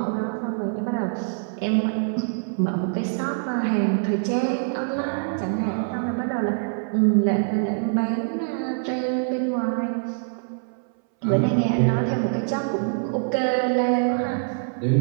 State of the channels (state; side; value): silent; left; 62 dB below the other